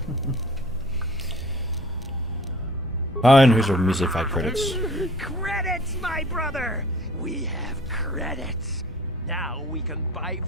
Fine, here's our measly 5 credits. Credits, my brother! We have credits. Now we can buy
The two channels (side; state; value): both; normal; correlation 0.47